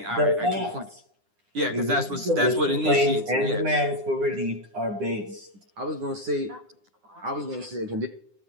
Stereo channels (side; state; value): left; late; 9.9 ms